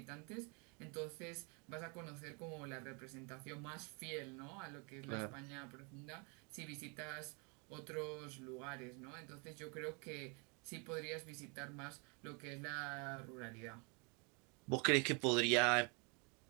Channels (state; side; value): quieter; left; 33.5 dB